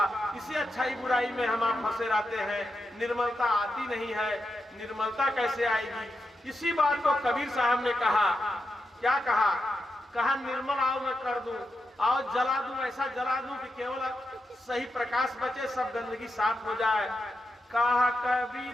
इसी अच्छाई बुराई में हम आप फंसे रहते हैं, निर्मलता आती नहीं है। निर्मलता कैसे आएगी? इसी बात को कबीर साहब ने कहा। क्या कहा? कहा निर्मल आओ मैं कर दूं, आओ जला दूं, ऐसा जला दूं कि केवल सही प्रकाश बचे, सब गंदगी साफ हो जाए। कहा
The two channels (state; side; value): normal; both; correlation 0.87